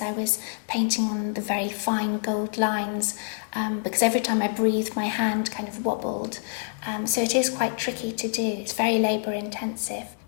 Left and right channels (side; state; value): right; silent; digital silence